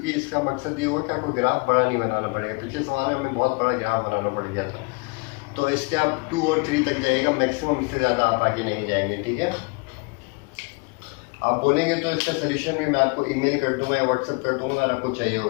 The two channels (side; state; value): right; quieter; 30.7 dB